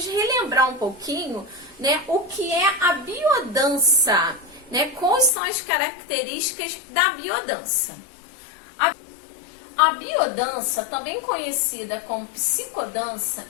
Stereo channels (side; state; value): right; drops out; at 5.3 s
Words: relembrar um pouquinho, né, o que é a biodança, né, quais são as características da biodança. A biodança, também conhecida como psicodança,